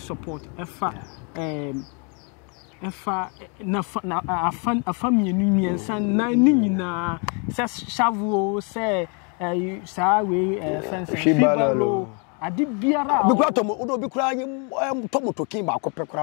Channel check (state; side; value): quieter; right; 36.9 dB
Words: efa na afa mienu miensa na ni nyina se shavuo se saa we fence shibalo adi biara bi kura tomo odo bi kura tomo tokin ba akopɛ